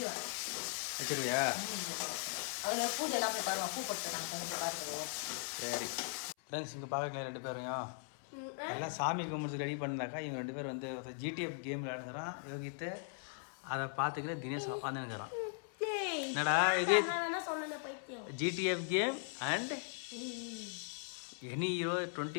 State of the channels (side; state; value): right; silent; 52 dB below the other